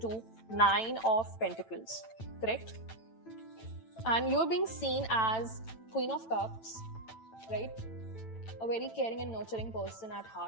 9 of Pentacles, correct? And you're being seen as Queen of Cups, right? A very caring and nurturing person at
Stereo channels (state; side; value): late; right; 9.0 ms